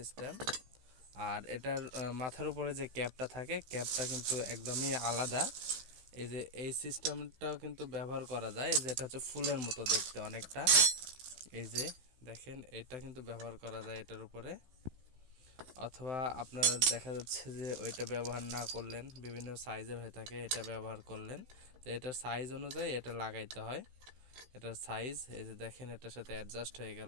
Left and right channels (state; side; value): late; left; 16 ms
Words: আর এটার মাথার উপরে যে ক্যাপটা থাকে, ক্যাপটা কিন্তু একদমই আলাদা। এই যে এই সিস্টেমটাও কিন্তু ব্যবহার করা যায়, যে এটা হচ্ছে ফুলের মতো দেখতে অনেকটা। এই যে দেখেন, এটা কিন্তু ব্যবহার করা যায় এটার উপরে। অথবা আপনারা দেখা যাচ্ছে যে ওইটা ব্যবহার না করলেন, বিভিন্ন সাইজের হয়ে থাকে, এটা ব্যবহার করলেন। তো এটার সাইজ অনুযায়ী এটা লাগাইতে হয়। এটার সাইজ এই যে দেখেন, এটার সাথে অ্যাডজাস্ট হয়ে